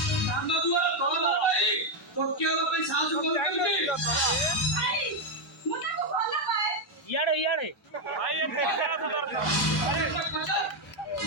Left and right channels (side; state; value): both; normal; correlation 0.03